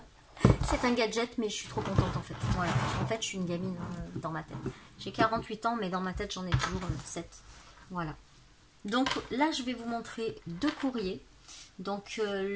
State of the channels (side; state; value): both; identical; correlation 1.00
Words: C'est un gadget mais je suis trop contente en fait. Voilà, en fait je suis une gamine dans ma tête. J'ai 48 ans mais dans ma tête j'en ai toujours 7. Voilà. Donc là je vais vous montrer deux courriers. Donc